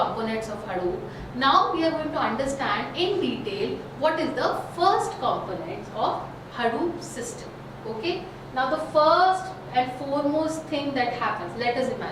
of Hadoop. Now we are going to understand in detail what is the first component of Hadoop system. Okay. Now the first and foremost thing that happens, let us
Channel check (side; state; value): both; identical; correlation 1.00